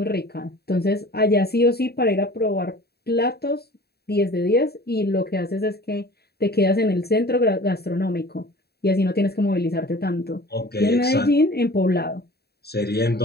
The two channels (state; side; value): late; right; 0.47 ms